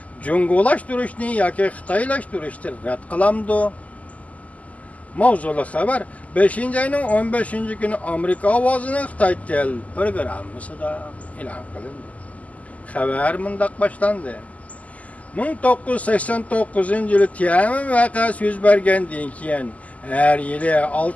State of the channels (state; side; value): late; right; 0.072 ms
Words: jungulashtirishni yoki xitoylashtirishni rad qilamdi. Mavzuli xabar 5-ayning 15-kuni Amerika ovozining Xitoy tel programmasida e'lon qilindi. Xabar mundaq boshlandi. 1989-yili Tiananmen voqeasi yuz bergandan keyin har yili